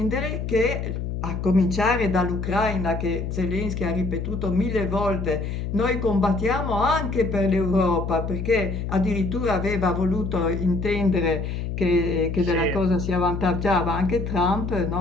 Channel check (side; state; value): left; noise; hum, 4 dB below the sound